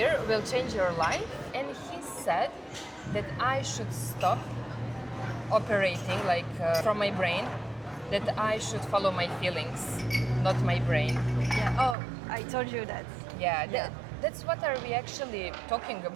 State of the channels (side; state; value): left; drops out; at 12.0 s